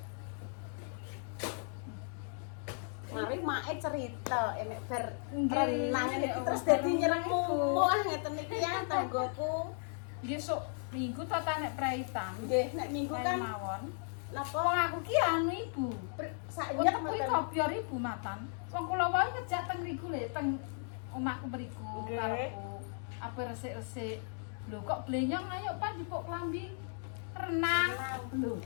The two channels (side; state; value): right; silent; 54 dB below the other